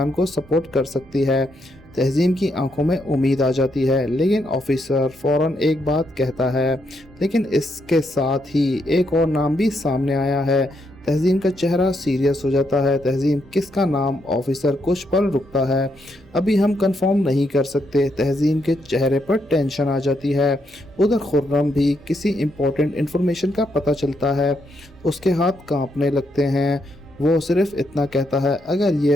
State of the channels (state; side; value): normal; both; correlation 0.78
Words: को सपोर्ट कर सकती है। तहजीम की आंखों में उम्मीद आ जाती है, लेकिन ऑफिसर फौरन एक बात कहता है। लेकिन इसके साथ ही एक और नाम भी सामने आया है। तहजीम का चेहरा सीरियस हो जाता है। तहजीम, किसका नाम? ऑफिसर कुछ पल रुकता है। अभी हम कंफर्म नहीं कर सकते। तहजीम के चेहरे पर टेंशन आ जाती है। उधर खुर्रम भी किसी इम्पोर्टेंट इन्फॉर्मेशन का पता चलता है। उसके हाथ कांपने लगते हैं। वो सिर्फ इतना कहता है, अगर